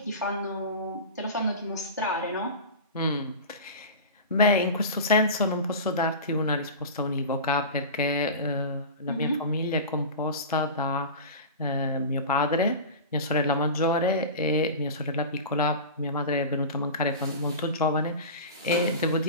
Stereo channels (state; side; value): inverted; both; correlation -0.30